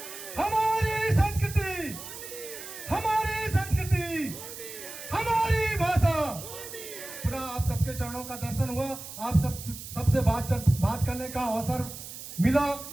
हमारे के चरणों का दर्शन हुआ, आप सबसे बात करने का अवसर मिला,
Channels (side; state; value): right; noise; hiss, 11 dB below the sound